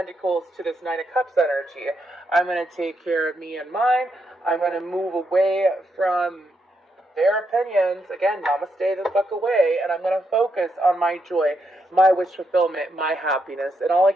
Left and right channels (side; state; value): both; normal; correlation 0.80